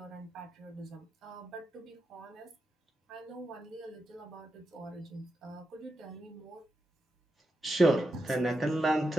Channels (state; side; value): normal; both; correlation 0.87